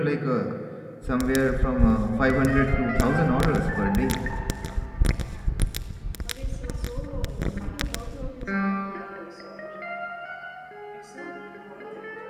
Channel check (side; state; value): both; identical; correlation 1.00